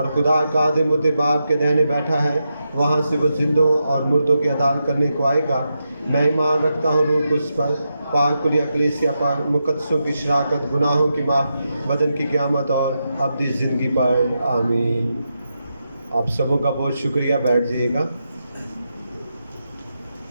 خدا قادر متعال کے دہنے بیٹھا ہے، وہاں سے وہ زندوں اور مردوں کی عدالت کرنے کو آئے گا۔ میں ایمان رکھتا ہوں روح القدس پر، پاک کلیہ کلیسیا پر، مقدسوں کی شراکت، گناہوں کی معاف، بدن کی قیامت اور ابدی زندگی پر، آمین۔ آپ سبوں کا بہت شکریہ، بیٹھ جائیے گا۔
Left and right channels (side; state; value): both; inverted; correlation -0.86